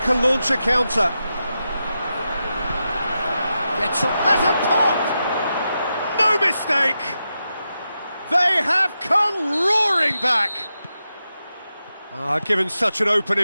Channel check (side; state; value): both; inverted; correlation -0.88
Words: launch a counter. Gets up, has a pop! No mistake! They have come roaring back! Given such an open